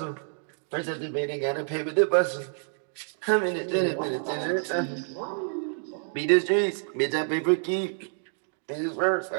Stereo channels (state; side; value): silent; left; digital silence